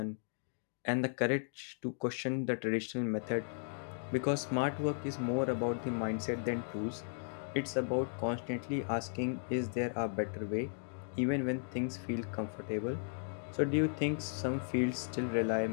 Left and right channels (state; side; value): silent; right; digital silence